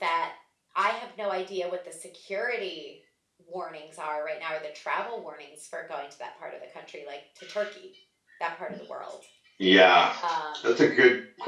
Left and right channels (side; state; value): both; identical; correlation 1.00